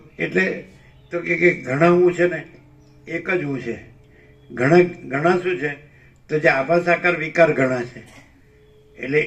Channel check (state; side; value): identical; both; correlation 1.00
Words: એટલે તો કે ઘણા હું છે ને એક જ હું છે. ઘણા શું છે? તો જે આભાસ આકાર વિકાર ઘણા છે. એટલે